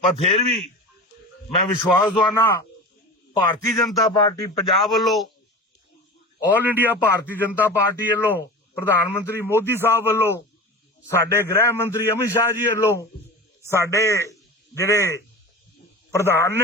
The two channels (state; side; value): normal; both; correlation 0.32